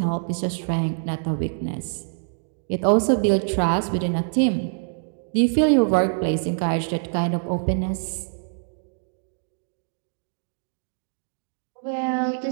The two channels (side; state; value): left; silent; digital silence